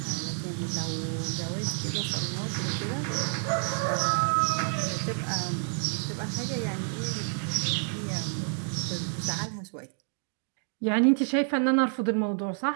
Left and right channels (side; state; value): left; silent; 58 dB below the other